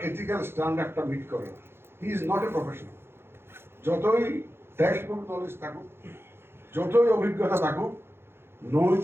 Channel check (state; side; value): late; left; 0.11 ms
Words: এথিক্যাল স্ট্যান্ডার্ডটা মিট করে না। He is not a professional. যতই টেক্সট বুক নলেজ থাকুক, যতই অভিজ্ঞতা থাকুক,